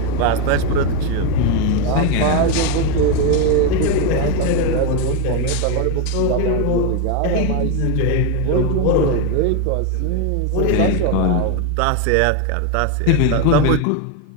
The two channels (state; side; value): different; both; correlation 0.02